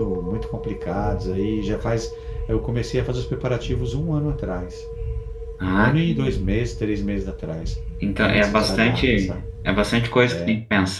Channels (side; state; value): both; identical; correlation 1.00